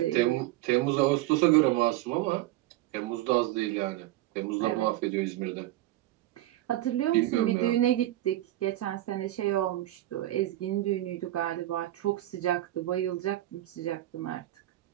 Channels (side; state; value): left; quieter; 15.4 dB